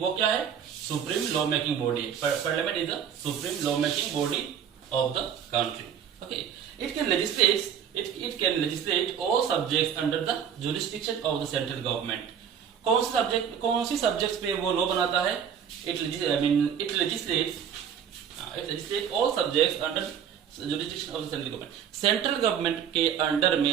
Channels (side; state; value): left; quieter; 8.2 dB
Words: क्या है? Supreme law making body. Parliament is the supreme law making body of the country. Okay, it can legislate all subjects under the jurisdiction of the central government. कौन सी सब्जेक्ट्स पे वो लॉ बनाता है? It legislate all subjects under jurisdiction of the central government. Central government के under